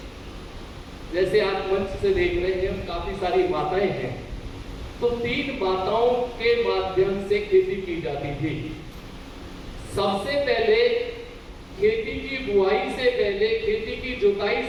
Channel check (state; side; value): identical; both; correlation 1.00